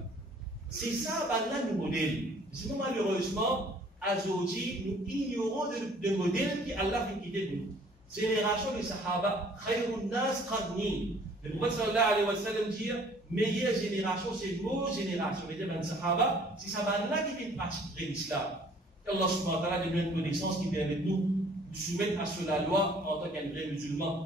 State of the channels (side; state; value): both; normal; correlation 0.56